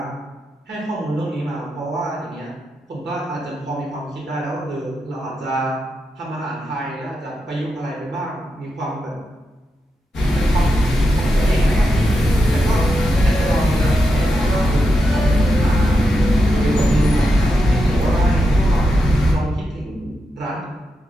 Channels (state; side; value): normal; both; correlation 0.86